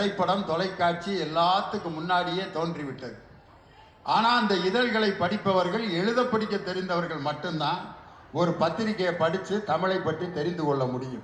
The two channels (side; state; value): both; identical; correlation 1.00